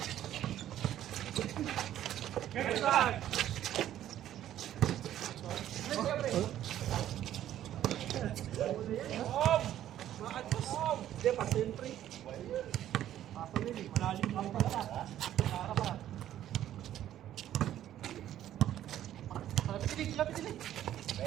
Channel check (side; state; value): left; quieter; 11.9 dB